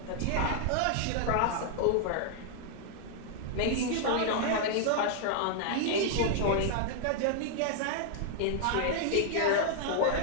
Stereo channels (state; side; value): different; both; correlation 0.00